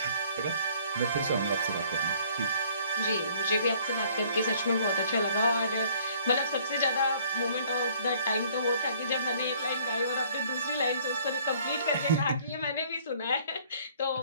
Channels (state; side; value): inverted; both; correlation -0.58